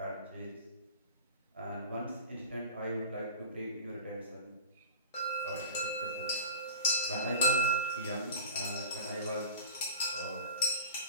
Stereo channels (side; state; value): both; inverted; correlation -0.36